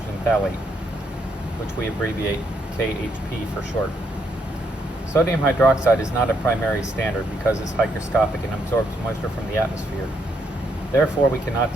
phthalate, which we abbreviate KHP for short. Sodium hydroxide is not a primary standard because it's hygroscopic and absorbs moisture from the atmosphere. Therefore, we cannot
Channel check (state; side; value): normal; both; correlation 0.75